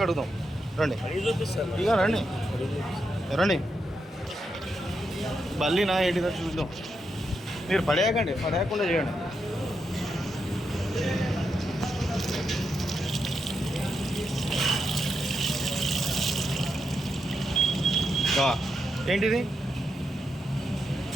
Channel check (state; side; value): normal; both; correlation 0.84